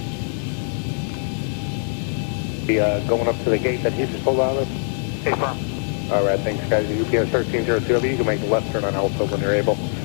Going up to the gate that he just pulled out of. Hey, firm. All right, thanks, guys. UPS 1302W, you can make the left turn on Alpha when you're able.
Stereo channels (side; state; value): right; silent; digital silence